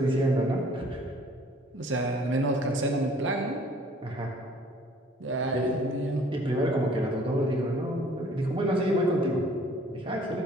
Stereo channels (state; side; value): normal; both; correlation 0.56